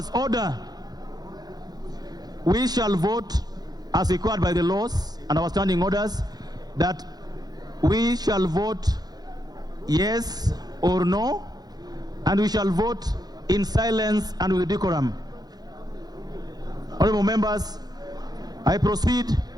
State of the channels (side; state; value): left; late; 0.19 ms